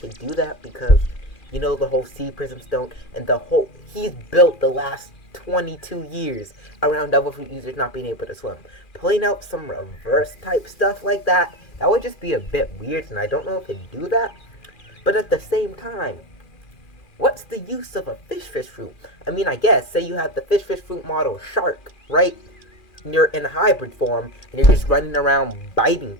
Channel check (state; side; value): late; right; 2.4 ms